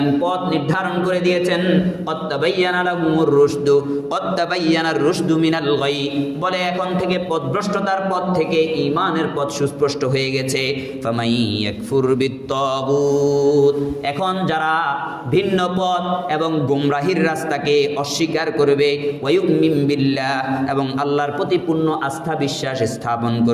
পথ নির্ধারণ করে দিয়েছেন। কদ তাবায়্যানা লাহুমুর রুশদু কদ তাবায়্যানার রুশদু মিনাল গায়্যি, বলে এখন থেকে পথভ্রষ্টতার পথ থেকে ঈমানের পথ সুস্পষ্ট হয়ে গেছে। ফামান ইয়াকফুর বিত-তাগুত, এখন যারা ভিন্ন পথ এবং গোমরাহির রাস্তাকে অস্বীকার করবে, ওয়া ইউমিন বিল্লাহ, এবং আল্লাহর প্রতি পূর্ণ আস্থা বিশ্বাস স্থাপন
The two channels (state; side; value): identical; both; correlation 1.00